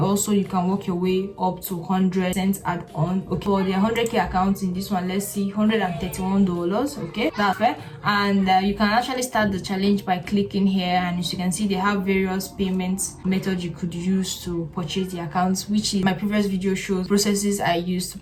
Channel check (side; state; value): both; identical; correlation 1.00